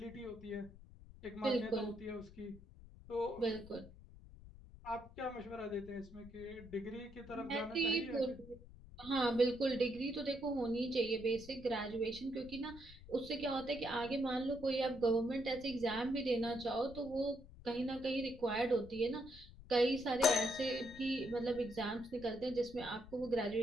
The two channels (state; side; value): noise; left; rumble, 18 dB below the sound